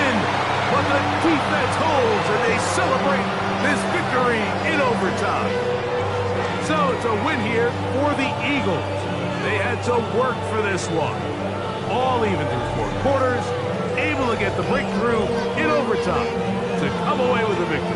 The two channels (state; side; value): identical; both; correlation 1.00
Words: but the defense holds, and they celebrate this victory in overtime. So it's a win here for the Eagles. They had to work for this one. All even through 4 quarters, able to get the breakthrough in overtime to come away with a